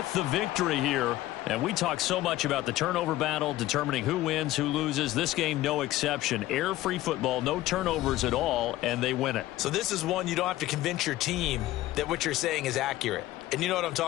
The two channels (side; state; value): right; quieter; 15.8 dB